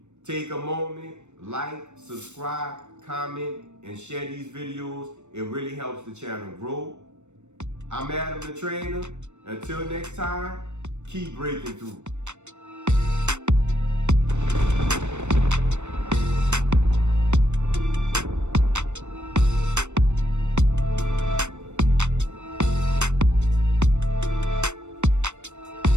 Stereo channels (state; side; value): late; left; 0.84 ms